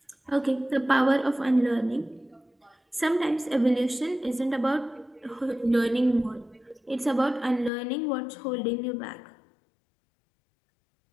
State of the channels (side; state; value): right; drops out; at 7.7 s